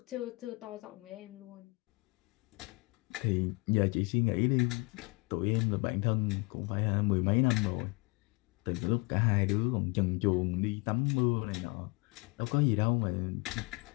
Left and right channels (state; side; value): quieter; right; 26.8 dB